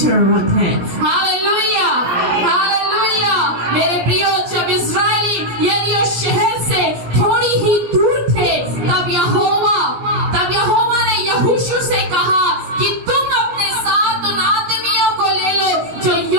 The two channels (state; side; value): late; left; 17 ms